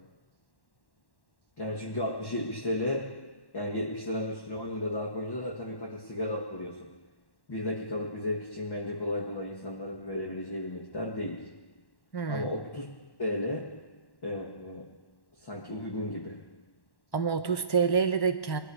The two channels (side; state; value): right; late; 1.1 ms